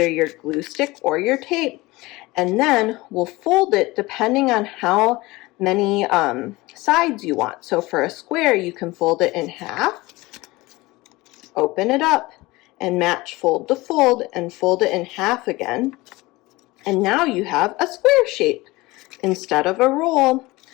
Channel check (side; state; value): right; quieter; 21.0 dB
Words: your glue stick or your tape, and then we'll fold it depending on how many sides you want. So for a square, you can fold it in half, open it up, and match fold to fold, and fold it in half again. And now you have a square shape instead of a roll.